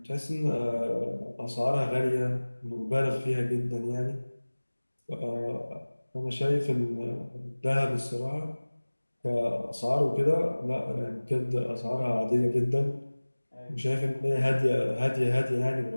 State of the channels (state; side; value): inverted; both; correlation -1.00